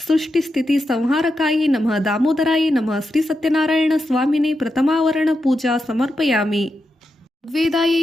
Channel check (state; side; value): normal; both; correlation 0.87